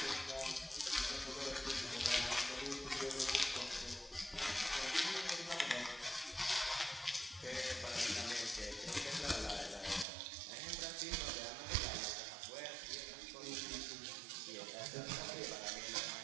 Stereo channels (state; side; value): drops out; left; at 10.1 s